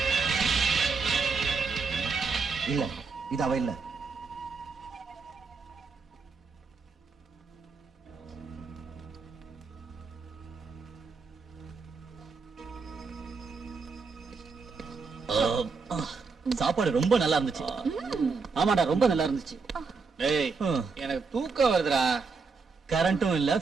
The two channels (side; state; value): left; quieter; 4.7 dB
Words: இல்ல, இது அவ இல்ல. சாப்பாடு ரொம்ப நல்லா இருந்துச்சு. ஆமாடா, ரொம்ப நல்லா இருந்துச்சு. டேய், எனக்கு தூக்கம் வருதுடா. கரண்ட்டும் இல்ல,